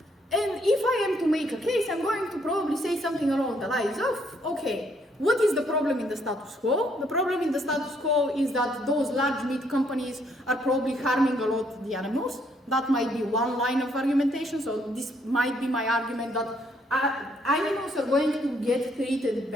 it. And if I am to make a case, I'm going to probably say something along the lines of, okay, what is the problem in the status quo? The problem in the status quo is that those large meat companies are probably harming a lot the animals. That might be one line of argumentation, so this might be my argument that animals are going to get treated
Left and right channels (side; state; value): both; normal; correlation 0.69